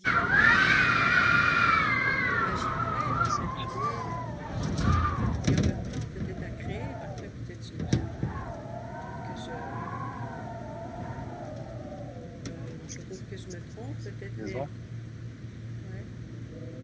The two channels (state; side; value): identical; both; correlation 1.00